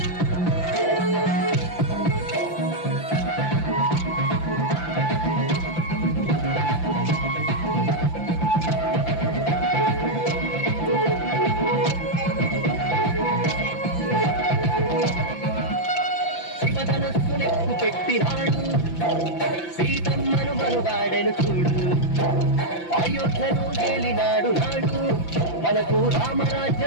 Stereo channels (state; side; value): late; right; 5.9 ms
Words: శివధనస్సునెక్కు పెట్టినాడు సీతమ్మను మనువాడను చూడు అయోధ్యను తేలినాడు నాడు మనకు